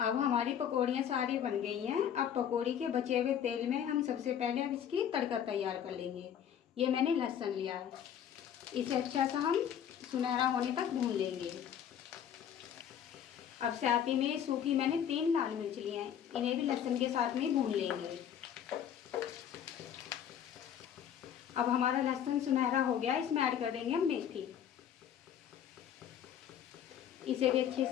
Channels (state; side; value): quieter; right; 9.2 dB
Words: अब हमारी पकौड़ियाँ सारी बन गई हैं। अब पकौड़ी के बचे हुए तेल में हम सबसे पहले अब इसकी तड़का तैयार कर लेंगे। ये मैंने लहसुन लिया है। इसे अच्छा सा हम सुनहरा होने तक भून लेंगे। अब साथ ही में सूखी मैंने 3 लाल मिर्च लिए हैं। इन्हें भी लहसुन के साथ में भून लेंगे। अब हमारा लहसुन सुनहरा हो गया। इसमें ऐड कर देंगे हम मेथी। इसे भी अच्छे